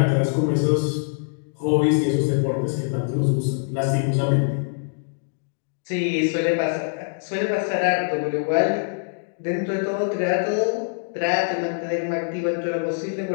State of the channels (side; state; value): right; silent; digital silence